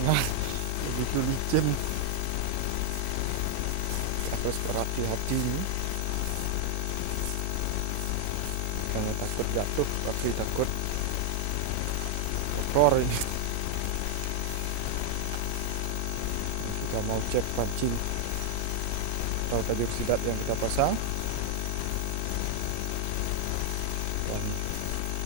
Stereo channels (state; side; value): different; both; correlation 0.00